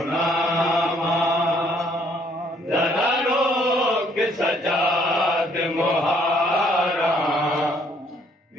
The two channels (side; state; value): both; normal; correlation 0.65